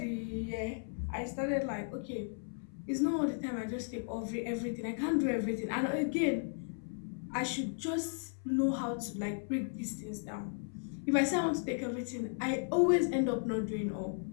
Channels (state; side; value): silent; right; 54 dB below the other